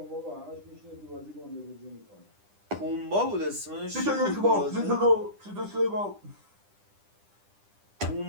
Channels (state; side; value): late; left; 10 ms